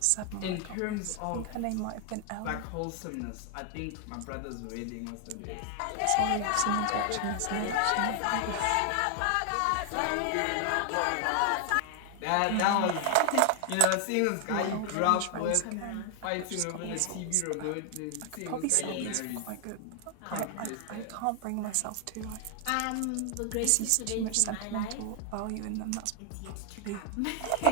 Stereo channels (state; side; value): different; both; correlation 0.00